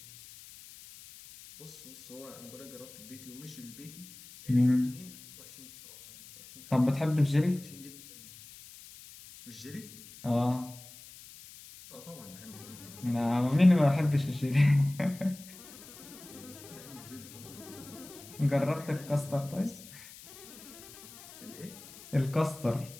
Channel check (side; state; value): left; noise; hiss, 18 dB below the sound